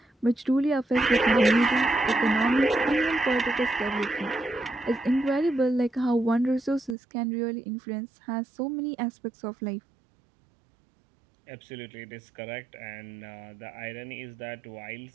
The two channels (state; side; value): drops out; left; at 7.0 s